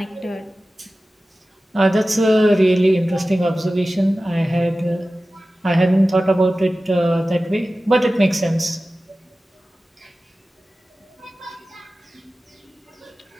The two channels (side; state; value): both; normal; correlation 0.96